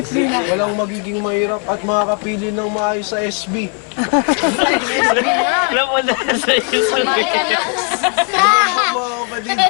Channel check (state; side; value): quieter; right; 38.2 dB